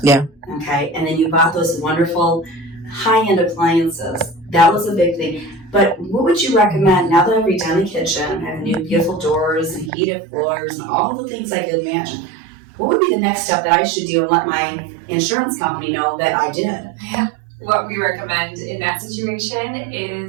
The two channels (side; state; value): left; drops out; at 9.9 s